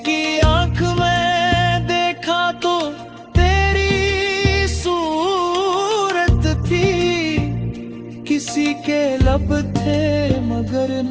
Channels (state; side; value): identical; both; correlation 1.00